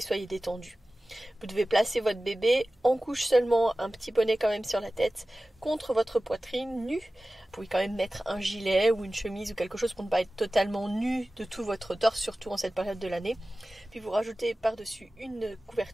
détendus. Vous devez placer votre bébé en couche seulement, un petit bonnet quand même sur la tête, contre votre poitrine nue. Vous pouvez quand même mettre un gilet ou une chemise ou quelque chose pour ne pas être totalement nu de tout votre torse, surtout en cette période de l'année. Puis vous rajoutez par-dessus une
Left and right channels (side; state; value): both; normal; correlation 0.96